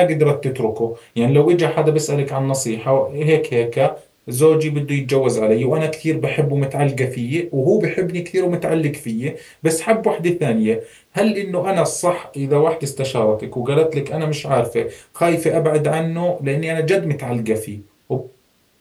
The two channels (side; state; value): both; identical; correlation 1.00